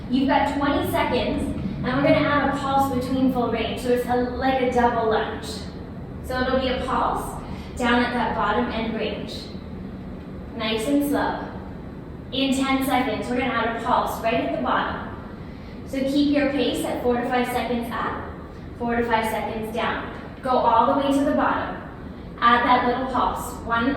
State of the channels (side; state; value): both; identical; correlation 1.00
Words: You've got 20 seconds, and we're going to add a pulse between full range. So it's like a double lunge. So it'll be a pulse down at that bottom end range. Nice and slow. In 10 seconds, we're going to add a pulse right at the bottom. So keep your pace at 4 to 5 seconds up, 4 to 5 seconds down. Go all the way to the bottom. Add that little pulse, 1